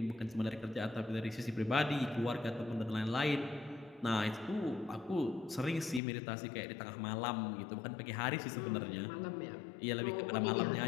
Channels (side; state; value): right; drops out; at 6.0 s